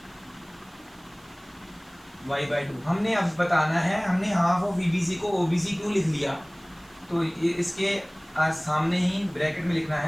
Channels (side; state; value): right; noise; hiss, 28 dB below the sound